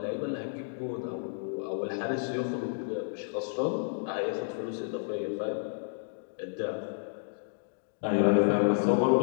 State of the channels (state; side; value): silent; right; digital silence